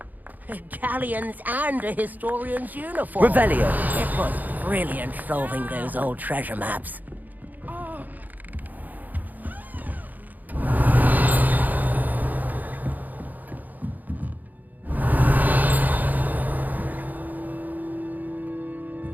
Galleons and a historian's uniform. Revelio. It was brilliant solving those old treasure maps.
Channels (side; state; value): left; late; 0.083 ms